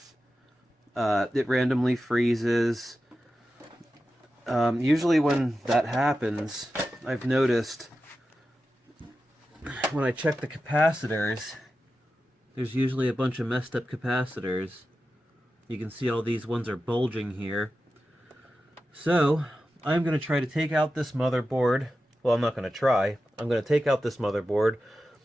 It randomly freezes. Usually when that happens, I've noticed when I check the capacitors, there's usually a bunch of messed up capacitors. You can see all these ones are bulging here. So, I'm going to try to take out this motherboard. Well, I'm not going to try. I'm going to take out this motherboard,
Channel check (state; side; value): normal; both; correlation 0.92